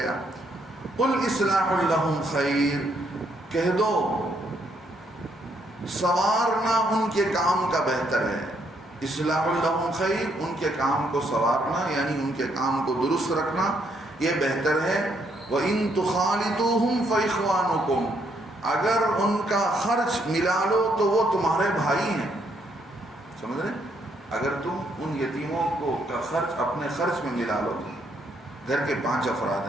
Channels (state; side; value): normal; both; correlation 0.73